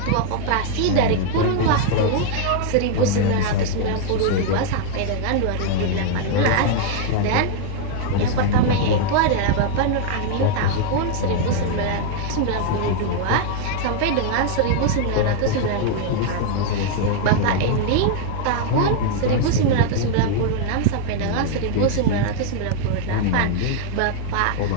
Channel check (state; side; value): different; both; correlation 0.00